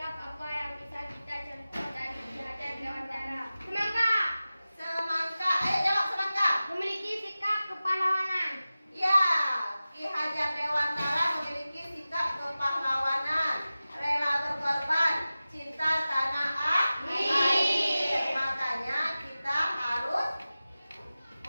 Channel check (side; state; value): both; inverted; correlation -0.96